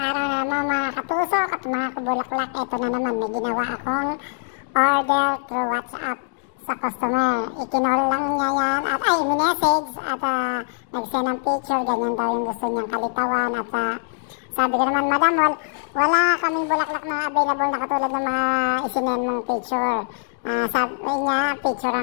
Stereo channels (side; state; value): right; silent; digital silence